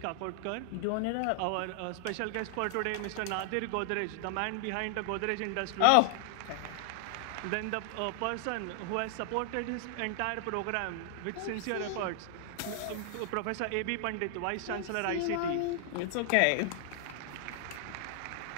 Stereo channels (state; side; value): different; both; correlation 0.00